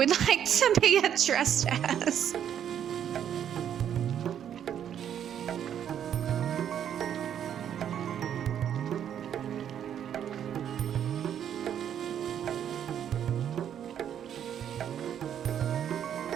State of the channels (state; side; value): quieter; left; 9.5 dB